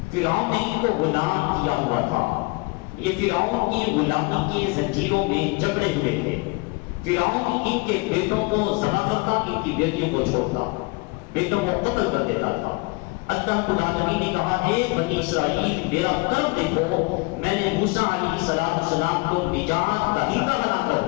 فرعون نے ان کو غلام کیا ہوا تھا. یہ فرعون کی غلامی کے زنجیروں میں جکڑے ہوئے تھے. فرعون ان کے بیٹوں کو ذبح کرتا، ان کی بیٹیوں کو چھوڑتا، بیٹوں کو قتل کر دیتا تھا. اللہ العالمین نے کہا اے بنی اسرائیل میرا کرم دیکھو، میں نے موسیٰ علیہ السلام کو نجات دہندہ بنا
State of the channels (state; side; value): quieter; right; 27.6 dB